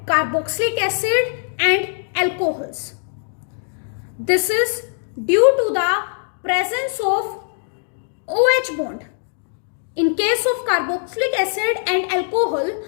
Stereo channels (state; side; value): silent; right; digital silence